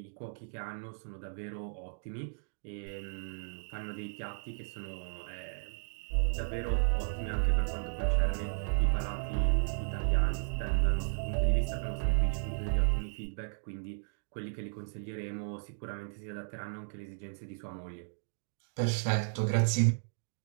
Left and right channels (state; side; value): silent; left; digital silence